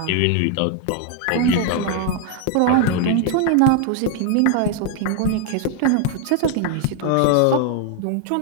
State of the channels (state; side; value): different; both; correlation 0.00